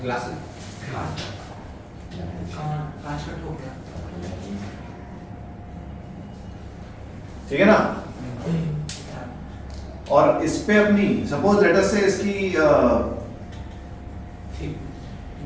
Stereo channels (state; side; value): identical; both; correlation 1.00